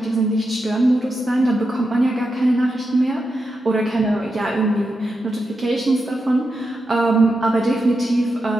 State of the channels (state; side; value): normal; both; correlation 0.87